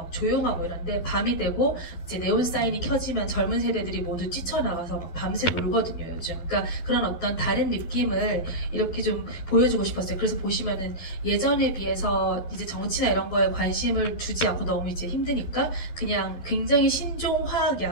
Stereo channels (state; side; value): late; right; 12 ms